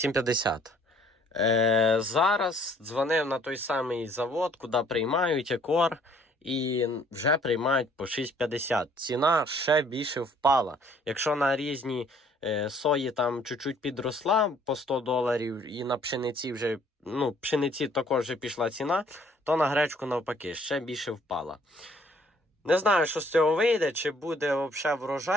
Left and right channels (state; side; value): normal; both; correlation 0.60